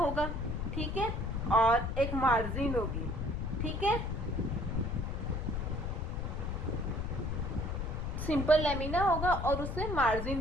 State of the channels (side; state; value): left; noise; rumble, 2 dB below the sound